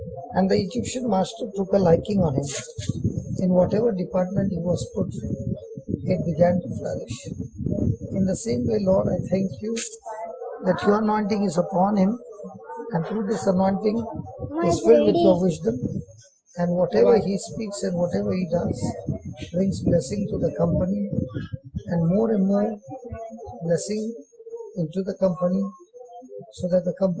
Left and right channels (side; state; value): both; identical; correlation 1.00